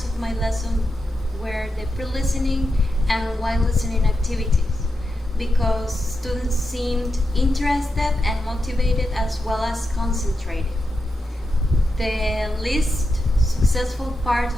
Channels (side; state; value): both; normal; correlation 0.87